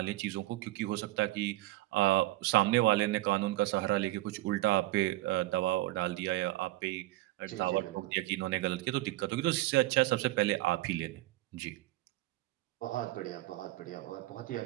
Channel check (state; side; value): quieter; left; 17.9 dB